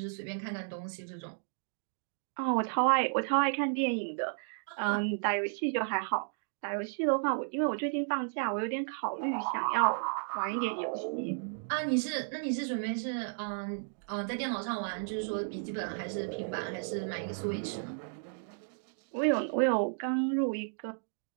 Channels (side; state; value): left; silent; digital silence